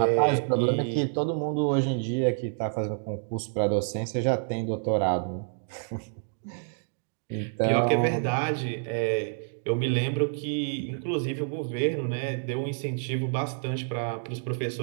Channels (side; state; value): left; silent; digital silence